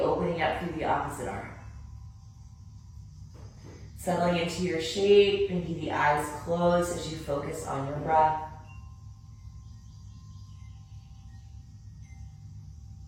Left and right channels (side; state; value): both; identical; correlation 1.00